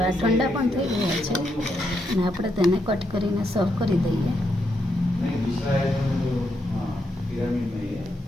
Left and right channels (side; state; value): both; normal; correlation 0.80